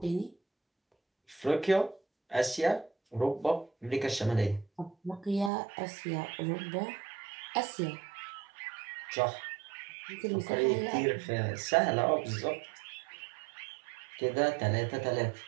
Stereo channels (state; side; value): drops out; left; at 5.5 s